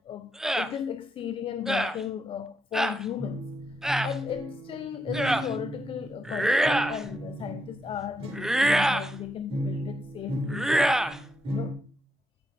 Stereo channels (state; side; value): normal; both; correlation 0.80